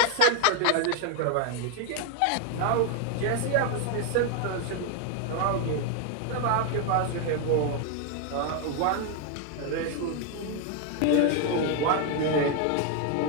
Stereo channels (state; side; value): different; both; correlation 0.01